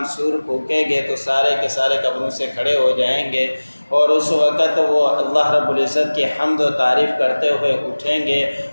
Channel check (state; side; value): inverted; both; correlation -1.00